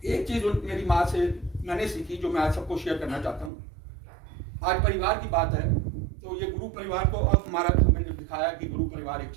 एक चीज मेरी माँ से मैंने सीखी जो मैं आज सबको शेयर करना चाहता हूँ। आज परिवार की बात है तो ये गुरु परिवार को अब हमारा मैंने दिखाया कि गुरु परिवार एक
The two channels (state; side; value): drops out; left; at 3.5 s